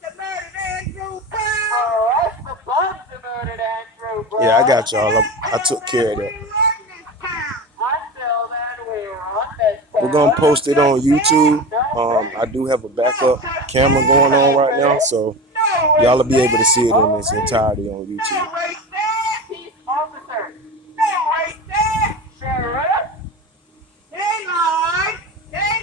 that murdered Andrew Brown. Yeah, I got y'all. I took care of that. We're gonna post it on YouTube. I do have a backup camera going on right now, so y'all will be able to see it in its entirety on YouTube.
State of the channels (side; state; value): both; normal; correlation 0.27